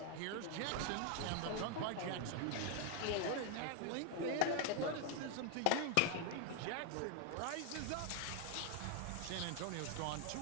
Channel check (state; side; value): different; both; correlation 0.00